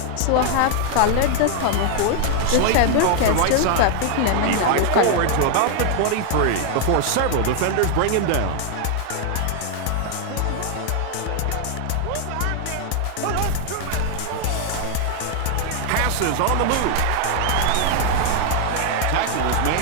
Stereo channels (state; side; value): different; both; correlation 0.00